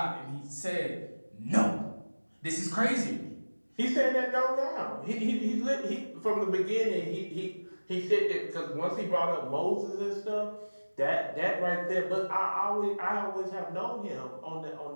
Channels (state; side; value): inverted; both; correlation -1.00